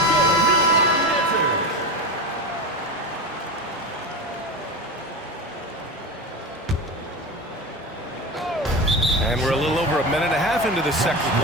And we're a little over a minute and a half into the second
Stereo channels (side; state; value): both; normal; correlation 0.24